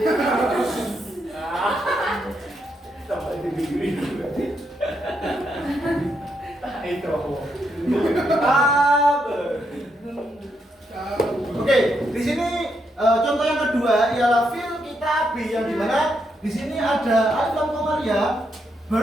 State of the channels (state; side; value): normal; both; correlation 0.79